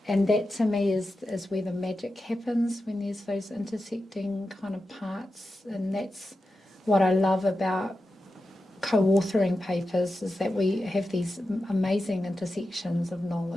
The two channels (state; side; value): normal; both; correlation 0.90